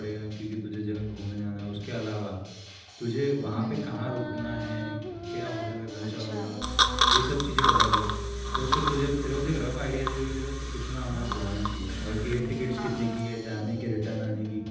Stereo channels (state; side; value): identical; both; correlation 1.00